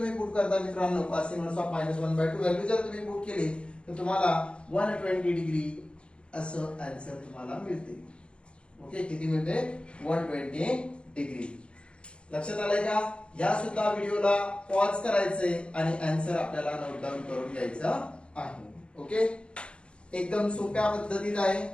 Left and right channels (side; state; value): right; late; 0.057 ms